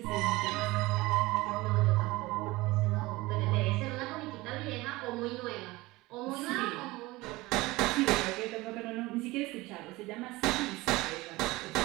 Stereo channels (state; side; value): quieter; left; 20.7 dB